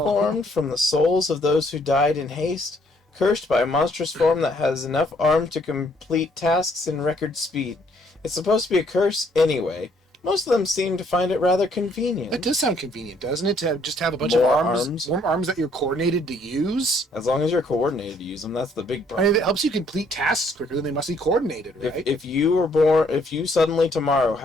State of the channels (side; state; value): both; normal; correlation 0.66